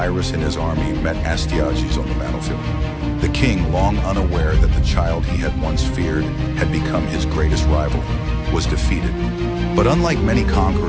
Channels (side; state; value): both; identical; correlation 1.00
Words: and his army met Astyages on the battlefield. The king, long unaware that the child he had once feared had become his greatest rival, was defeated. But unlike many